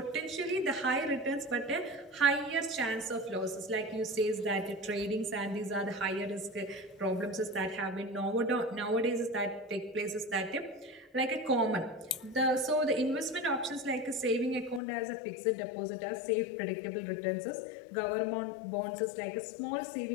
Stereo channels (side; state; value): right; drops out; at 14.8 s